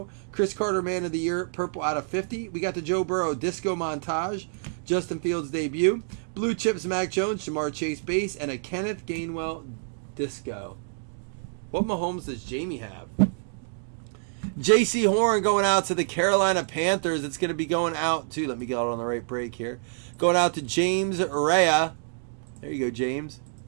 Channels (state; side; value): silent; left; digital silence